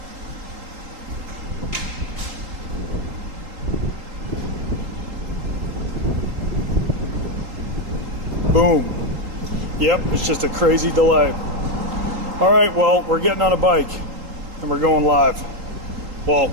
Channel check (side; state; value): left; late; 3.8 ms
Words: Boom. Yep, it's just a crazy delay. All right, well, we're getting on a bike and we're going live. Well,